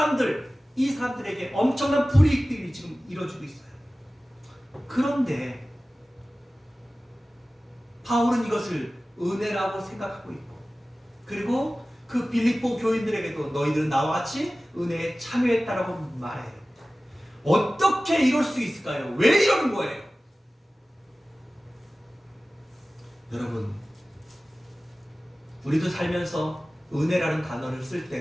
엄청난 불이익들이 지금 이루어지고 있어요. 그런데 바울은 이것을 은혜라고 생각하고 있고 그리고 그 빌립보 교인들에게도 너희들은 나와 같이 은혜에 참여했다라고 말해요. 어떻게 이럴 수 있을까요? 왜 이러는 거예요? 여러분 우리도 살면서 은혜라는 단어를 쓸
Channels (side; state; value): both; normal; correlation 0.96